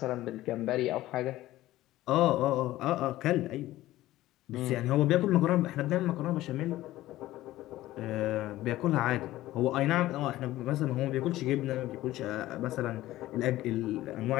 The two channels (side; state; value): right; quieter; 15.9 dB